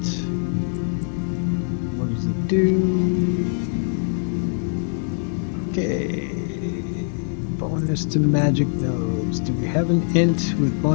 what does it do? Okay. Bonus to magic nodes. Do we have an int with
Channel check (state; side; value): silent; right; 64 dB below the other